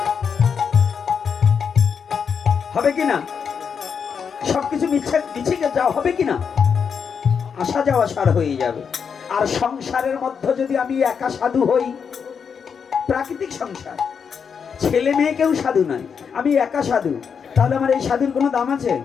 হবে কিনা? সবকিছু মিছে যাওয়া হবে কিনা? আসা যাওয়া সার হয়ে যাবে। আর সংসারের মধ্যে যদি আমি একা সাধু হই, প্রাকৃতিক সংসার, ছেলে মেয়ে কেউ সাধু নয়, আমি একা সাধু, তাহলে আমার এই সাধুর কোনো দাম আছে?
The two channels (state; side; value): quieter; right; 6.5 dB